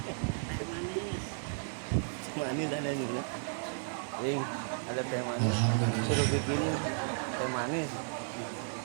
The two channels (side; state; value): left; silent; 55 dB below the other